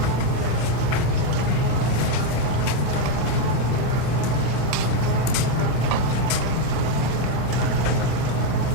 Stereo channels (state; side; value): different; both; correlation 0.03